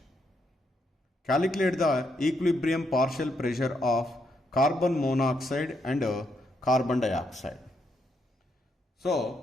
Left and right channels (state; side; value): normal; both; correlation 0.78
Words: Calculate the equilibrium partial pressure of carbon monoxide and carbon dioxide.